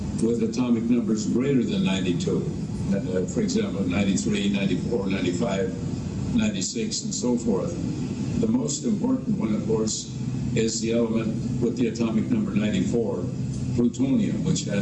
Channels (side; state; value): both; identical; correlation 1.00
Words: with atomic numbers greater than 92. For example, 93, 94, 95, 96, and so forth. The most important one, of course, is the element with the atomic number 94, plutonium, which